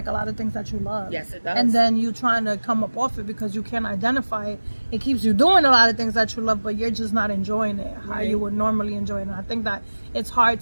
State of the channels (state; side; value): inverted; both; correlation -1.00